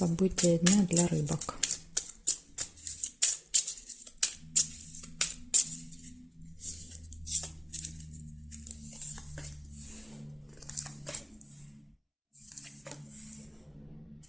дня для рыбок.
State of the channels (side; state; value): both; identical; correlation 1.00